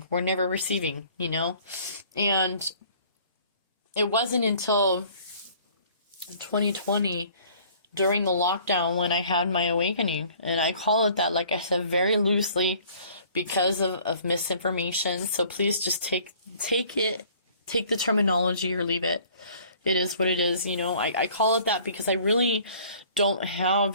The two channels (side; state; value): both; inverted; correlation -0.54